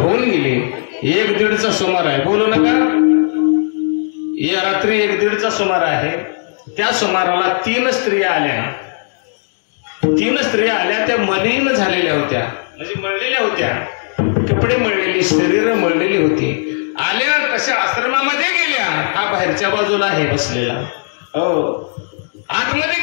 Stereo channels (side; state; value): right; silent; digital silence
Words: गेली. 1-1:30चा सुमार आहे. बोलू नका. या रात्री 1-1:30चा सुमार आहे. त्या सुमाराला 3 स्त्रिया आल्या. 3 स्त्रिया आल्या. त्या मलिन झालेल्या होत्या, म्हणजे मळलेल्या होत्या, कपडे मळलेली, शरीर मळलेली होती. आल्या कशा आश्रमामध्ये गेल्या. हा बाहेरच्या बाजूला आहे बसलेला. हो, आतमध्ये